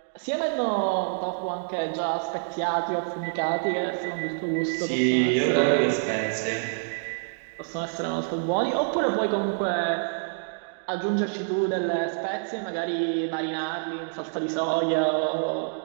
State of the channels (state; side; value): silent; left; digital silence